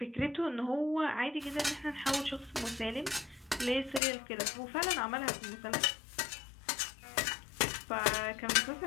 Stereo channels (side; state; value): right; drops out; at 4.0 s